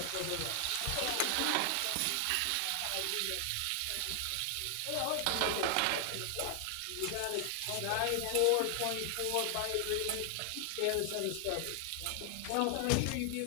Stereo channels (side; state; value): both; different; correlation 0.00